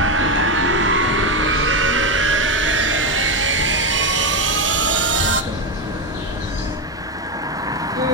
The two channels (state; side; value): normal; both; correlation 0.11